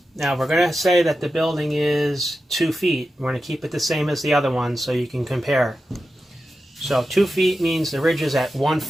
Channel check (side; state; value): both; normal; correlation 0.91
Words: Now we're going to say that the building is 2 feet. We're going to keep it the same as the other one so you can compare. So 2 feet means the ridge is at 1